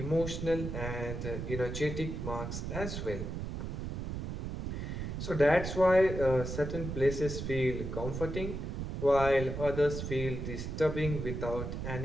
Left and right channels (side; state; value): right; noise; rumble, 4 dB below the sound